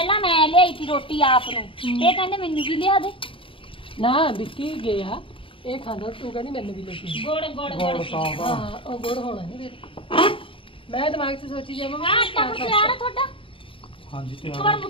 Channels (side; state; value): right; late; 0.26 ms